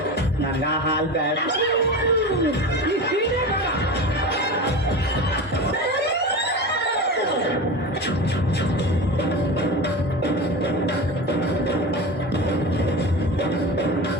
ನಂಗ ಹಾಲ್ ಬೇಡ. ಈ ಸೀರೆ ಬೇಡ.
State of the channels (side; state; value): both; normal; correlation 0.28